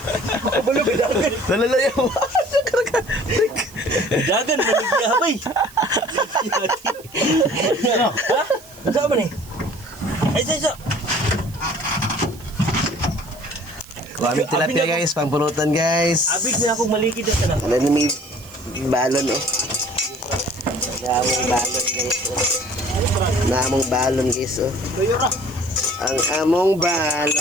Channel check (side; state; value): right; noise; hiss, 21 dB below the sound